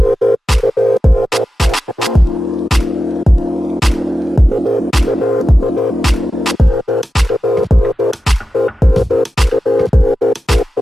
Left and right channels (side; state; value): both; normal; correlation 0.92